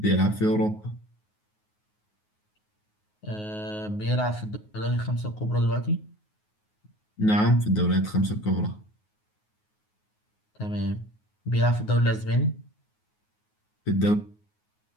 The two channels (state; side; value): late; right; 9.5 ms